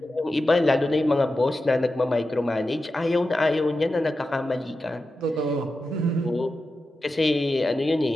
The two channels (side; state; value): both; normal; correlation 0.91